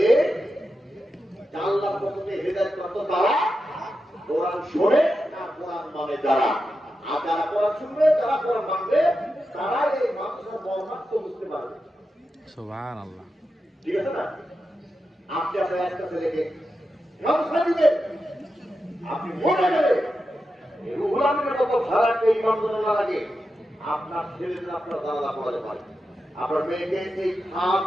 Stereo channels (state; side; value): normal; both; correlation 0.89